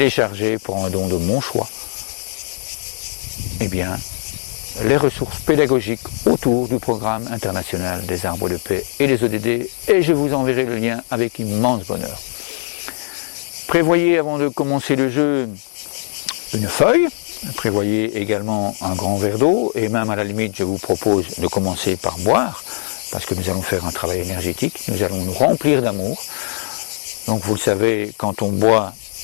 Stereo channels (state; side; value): silent; right; digital silence